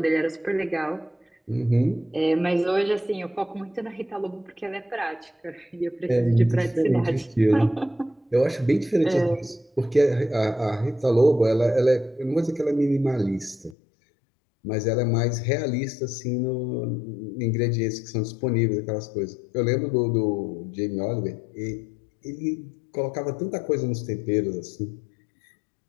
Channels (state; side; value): drops out; right; at 13.8 s